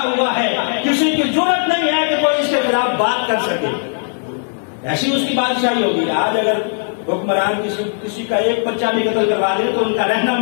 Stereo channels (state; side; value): silent; right; digital silence